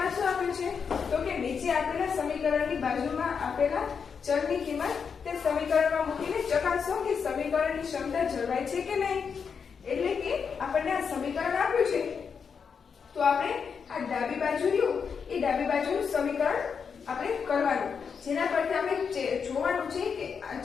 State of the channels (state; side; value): quieter; right; 6.2 dB